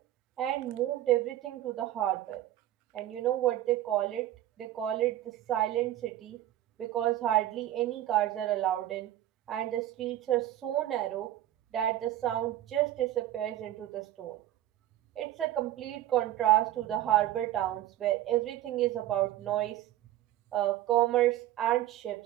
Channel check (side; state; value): left; quieter; 13.4 dB